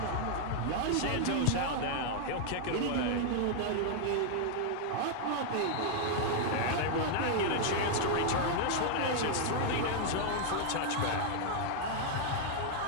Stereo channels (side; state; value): both; different; correlation 0.00